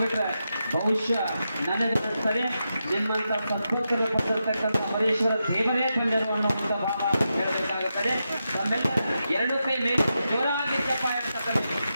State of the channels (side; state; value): both; inverted; correlation -0.87